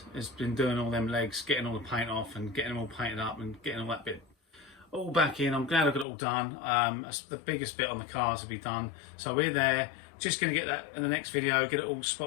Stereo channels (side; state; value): right; drops out; at 6.1 s